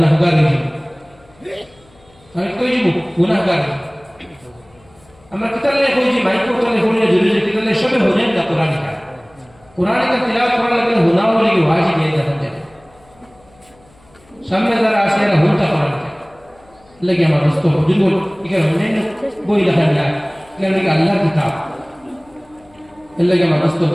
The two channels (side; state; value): left; noise; hum, 30 dB below the sound